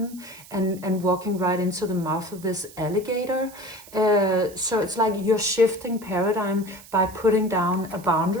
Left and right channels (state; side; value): noise; right; hiss, 20 dB below the sound